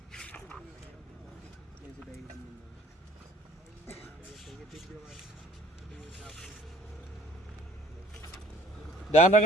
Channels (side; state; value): both; normal; correlation 0.55